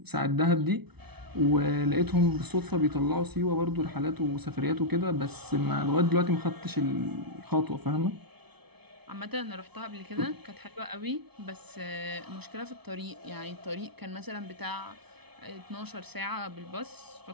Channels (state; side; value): late; left; 0.99 ms